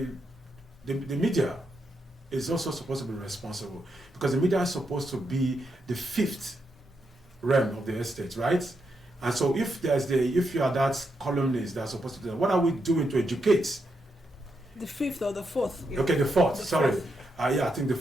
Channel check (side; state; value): both; normal; correlation 0.82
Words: media is also supposed to be responsible, because the media is supposed to be the fifth realm of the estate, right? And so if you are that columnist that's supposed to do that, what are we doing to educate? The fifth or the fourth? Okay, the fourth. Sorry. I think the